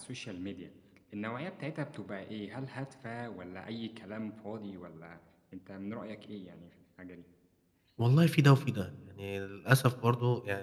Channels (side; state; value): both; identical; correlation 1.00